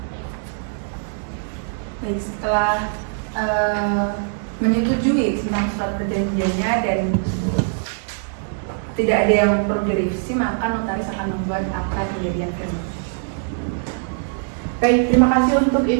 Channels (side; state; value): left; silent; digital silence